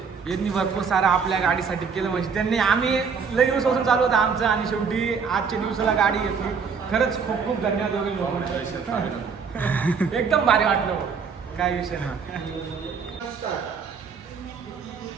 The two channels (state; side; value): quieter; left; 5.8 dB